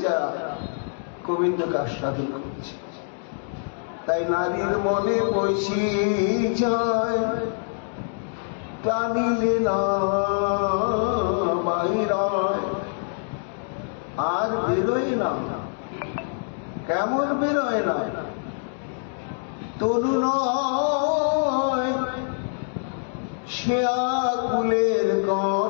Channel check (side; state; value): right; silent; digital silence